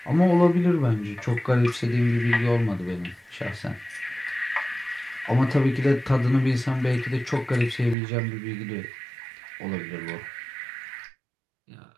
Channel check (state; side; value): drops out; left; at 8.0 s